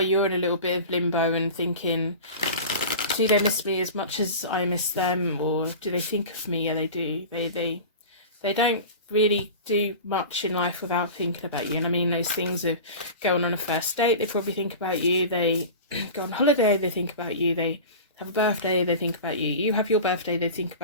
you're in a little bit of limbo and thinking, do they miss me as much as I miss them, or do they think of me? Yeah, they do. They don't really do much in life without thinking about you. And I mean, those things of going on a first date, they probably think about you. They go on holiday, they think about you. They have a birthday, they think about you. You have your birthday, they think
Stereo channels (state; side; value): inverted; both; correlation -0.33